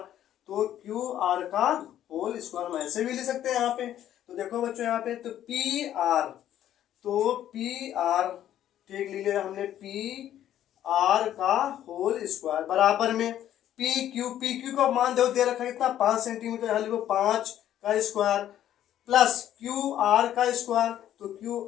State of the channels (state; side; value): quieter; right; 11.5 dB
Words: तो QR का होल स्क्वायर हम ऐसे भी ले सकते हैं यहाँ पे। तो देखो बच्चों यहाँ पे तो PR ठीक ले लिया हमने, PR का होल स्क्वायर बराबर में PQ का मान दे रखा है कितना 5 सेंटीमीटर, यहाँ लिखो 5 का स्क्वायर प्लस QR का स्क्वायर, तो